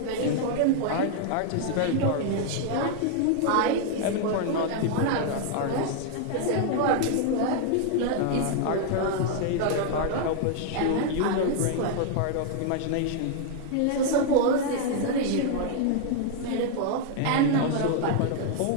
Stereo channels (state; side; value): different; both; correlation 0.00